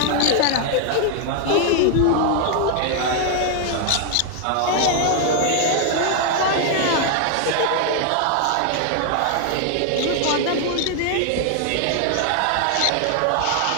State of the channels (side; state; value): both; different; correlation 0.00